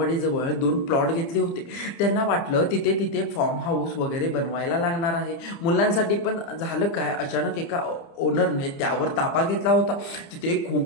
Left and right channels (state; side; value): late; right; 29 ms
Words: 2 प्लॉट घेतले होते. त्यांना वाटलं तिथे फार्म हाऊस वगैरे बनवायला लागणार आहे मुलांसाठी. पण झालं काय, अचानक एका ओनरने त्यावर ताबा घेतला होता. तिथे